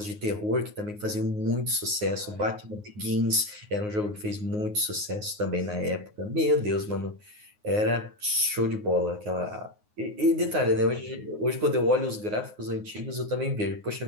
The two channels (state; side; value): late; left; 9.5 ms